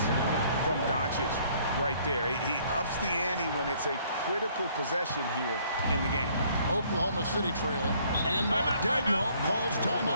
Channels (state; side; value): inverted; both; correlation -0.62